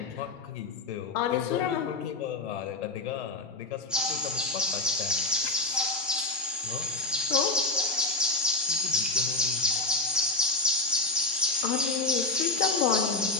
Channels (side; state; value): right; quieter; 3.2 dB